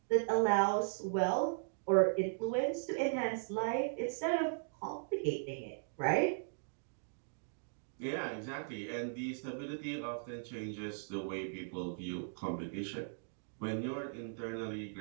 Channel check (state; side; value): silent; left; digital silence